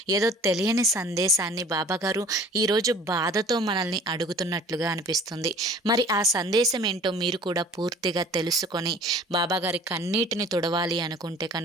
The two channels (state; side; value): normal; both; correlation 0.47